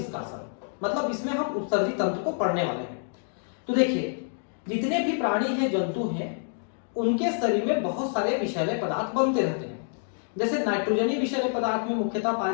मतलब इसमें हम उत्सर्जी तंत्र को पढ़ने वाले हैं। तो देखिए, जितने भी प्राणी हैं, जंतु हैं, उनके शरीर में बहुत सारे विषैले पदार्थ बनते रहते हैं। जैसे नाइट्रोजनी विषैले पदार्थ में मुख्यतः पाया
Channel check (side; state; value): right; silent; digital silence